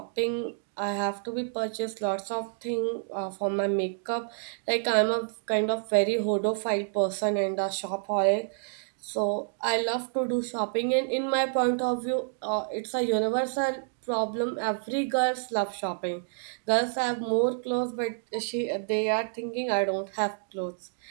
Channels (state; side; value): silent; left; digital silence